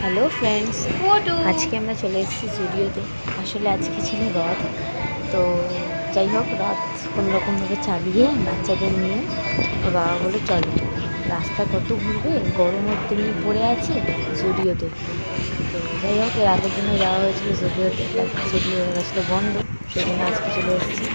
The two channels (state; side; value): inverted; both; correlation -1.00